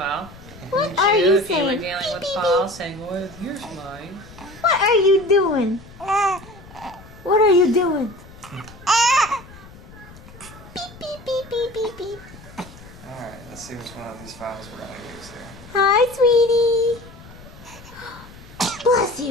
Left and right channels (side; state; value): left; noise; rumble, 19 dB below the sound